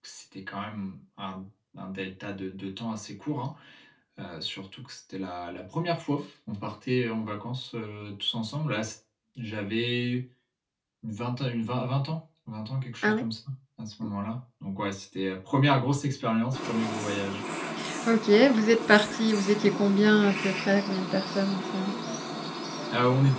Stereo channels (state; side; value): identical; both; correlation 1.00